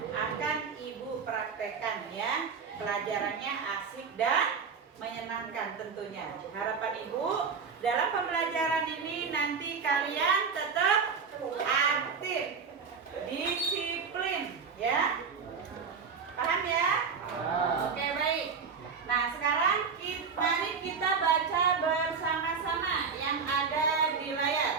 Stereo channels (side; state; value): left; quieter; 5.7 dB